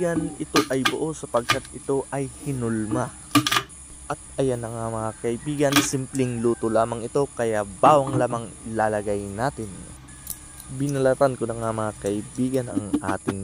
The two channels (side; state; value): both; identical; correlation 1.00